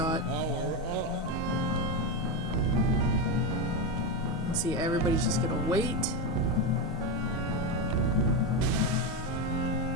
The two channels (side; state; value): both; normal; correlation 0.13